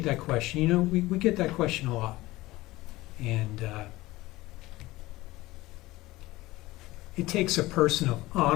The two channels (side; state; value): right; quieter; 18.8 dB